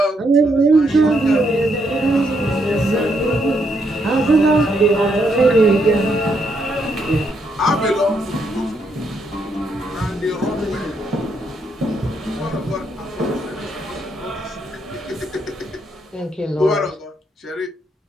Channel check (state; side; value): normal; both; correlation 0.76